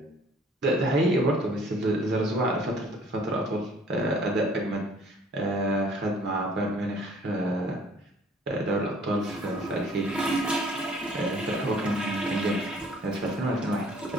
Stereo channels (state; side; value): normal; both; correlation 0.56